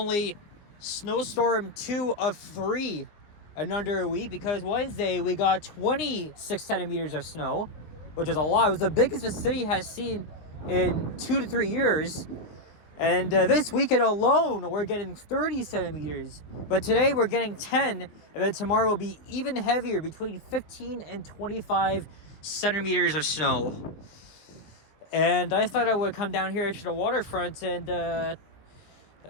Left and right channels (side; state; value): right; late; 19 ms